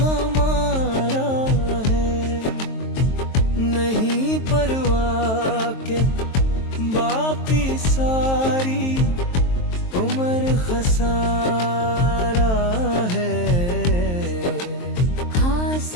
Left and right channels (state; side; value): late; right; 23 ms